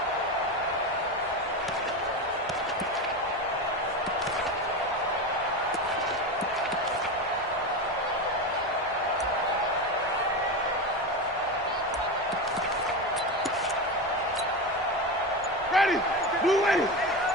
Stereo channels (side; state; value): both; normal; correlation 0.20